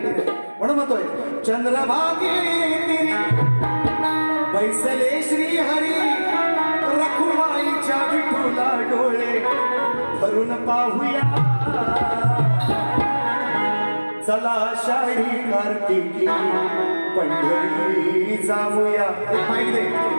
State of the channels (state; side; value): inverted; both; correlation -1.00